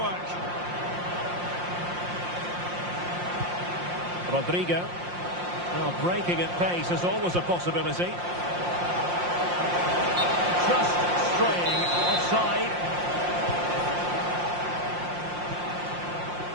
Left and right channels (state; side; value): late; left; 5.7 ms